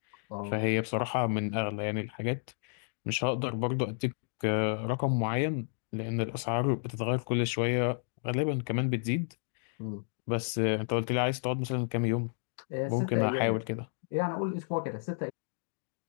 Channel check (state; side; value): silent; right; digital silence